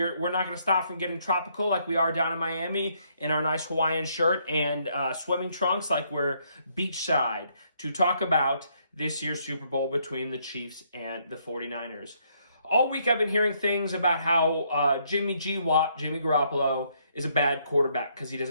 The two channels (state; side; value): inverted; both; correlation -0.71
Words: not going to stop from getting tropical like we are down in Miami in our nice Hawaiian shirt and swimming trunks like we're beachside to talk about this year's Super Bowl between the Chiefs and the 49ers. All week I've been hearing things about how Jimmy Garoppolo is a bad quarterback because he